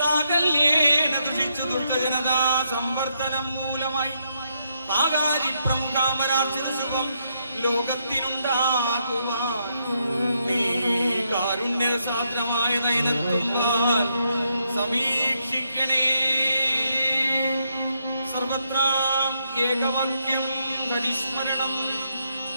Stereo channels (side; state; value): both; inverted; correlation -0.78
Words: ദുഷിച്ചു ദുഷ്ടജനതാ സംവർദ്ധനം മൂലമായി താകാരി പ്രമുഖാമരാർച്ചിത ശുഭം ലോകത്തിനുണ്ടാകുവാൻ നീ കാരുണ്യസാദ്രമായ നയനത്തുമ്പാൽ സമീക്ഷിക്കണേ. സർവത്രാം ഏകവാക്യം ഹരിസ്മരണം